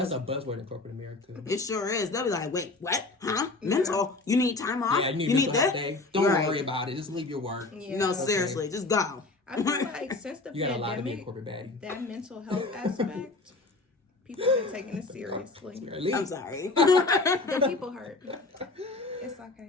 a buzzword in corporate America. It sure is. They'll be like, wait, what? Huh? Mental? You need time off? Yeah, you need this? Day? Don't worry about it. Just leave your work. Yeah. No, seriously, just go. I feel like since the You got a lot to be a pandemic, corporate baddie. that mental health aspect, people have been taking it seriously. I'm sorry. The people hurt. It's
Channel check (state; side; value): quieter; right; 3.3 dB